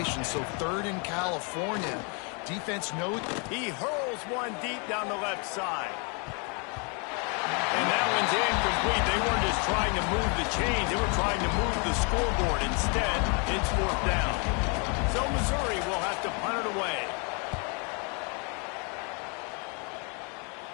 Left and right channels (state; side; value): quieter; right; 34.8 dB